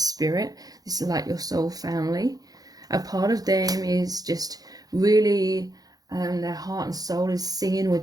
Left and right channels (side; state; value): left; late; 0.18 ms